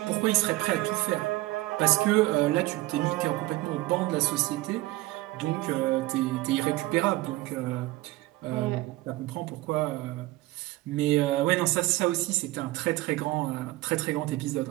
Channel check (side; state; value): left; quieter; 18.8 dB